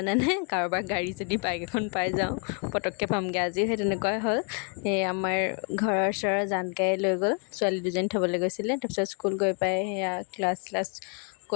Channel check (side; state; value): right; quieter; 38.7 dB